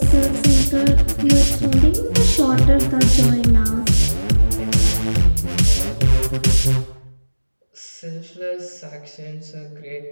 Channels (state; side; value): inverted; both; correlation -1.00